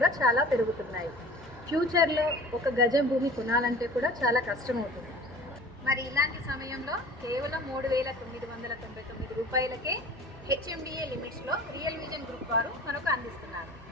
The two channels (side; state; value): both; normal; correlation 0.43